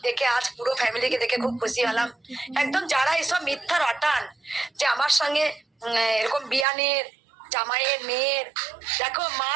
দেখে আজ পুরো ফ্যামিলিকে দেখে খুব খুশি হলাম। একদম যারা এসব মিথ্যা রটান যে আমার সঙ্গে এরকম বিয়ানের জামাইয়ের মেয়ের, দেখো মা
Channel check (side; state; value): left; drops out; at 6.7 s